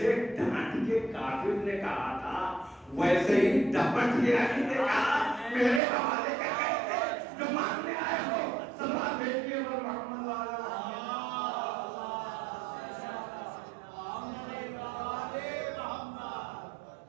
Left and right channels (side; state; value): left; drops out; at 5.8 s